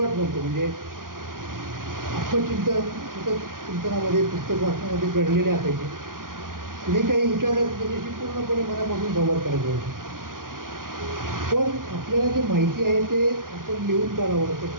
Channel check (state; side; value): late; left; 0.90 ms